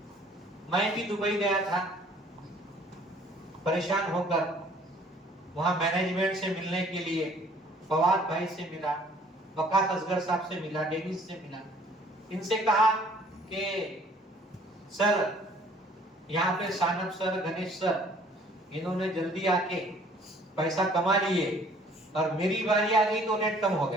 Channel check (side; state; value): both; normal; correlation 0.57